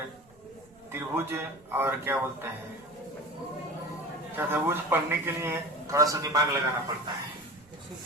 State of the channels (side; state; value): right; noise; rumble, 29 dB below the sound